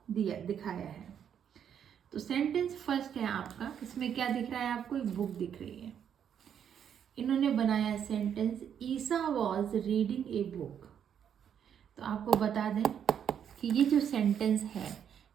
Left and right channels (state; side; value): quieter; left; 8.6 dB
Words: दिखाया है। तो सेंटेंस फर्स्ट है आपका, इसमें क्या दिख रहा है आपको, एक बुक दिख रही है। इन्होंने बनाया sentence Isa was reading a book. तो आपको बता दें कि ये जो सेंटेंस है